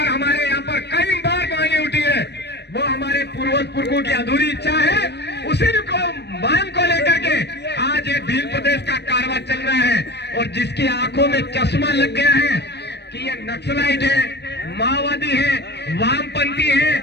हमारे यहाँ पर कई बार मांगे उठी है। वो हमारे पूर्वज पुरखों की अधूरी इच्छा है, उसी को मांग को लेकर के आज ये भील प्रदेश का कारवां चल रहा है। और जिसकी आंखों में चश्मा लग गया है कि ये नक्सलाइट है, माओवादी है, वामपंथी है,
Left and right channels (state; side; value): late; right; 0.49 ms